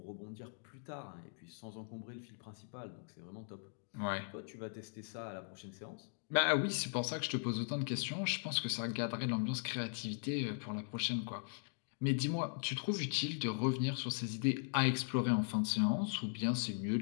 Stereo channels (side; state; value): right; silent; digital silence